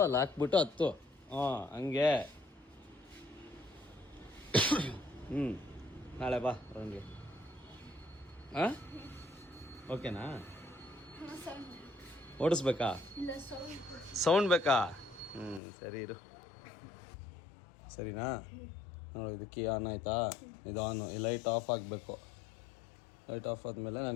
ಅಲ್ಲಿ ಹಾಕ್ಬಿಟ್ಟು ಹತ್ತು. ಹಂಗೆ. ನಾಳೆ ಬಾ ರೌಂಡ್ಗೆ. ಓಕೆನಾ? ಓಡಿಸ್ಬೇಕಾ? ಸೌಂಡ್ ಬೇಕಾ? ಸರಿ ಇರು. ಸರಿನಾ? ನೋಡಿ ಇದು ಕೀ ಆನ್ ಆಯ್ತಾ? ಇದು ಆನು. ಈ ಲೈಟ್ ಆಫ್ ಆಗಬೇಕು. ಲೈಟ್ ಆಫ್ ಆದಮೇಲೆ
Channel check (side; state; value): right; drops out; at 15.6 s